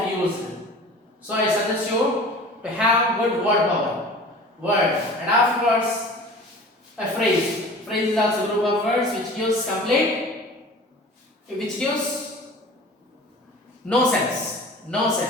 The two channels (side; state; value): both; normal; correlation 0.41